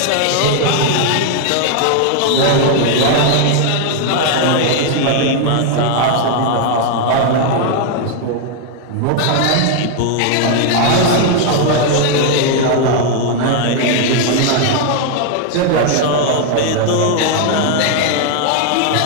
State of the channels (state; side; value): different; both; correlation 0.00